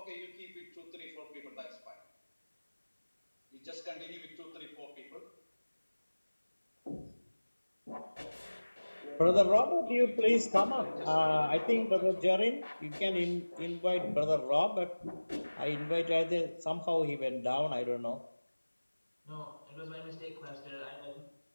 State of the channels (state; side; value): inverted; both; correlation -1.00